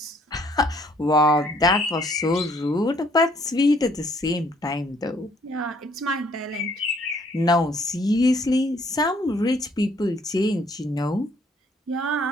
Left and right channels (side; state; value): both; normal; correlation 0.63